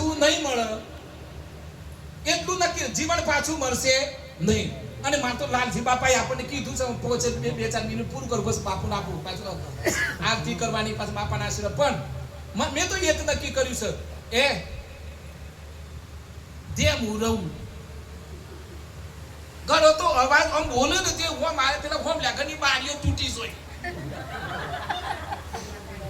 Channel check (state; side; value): identical; both; correlation 1.00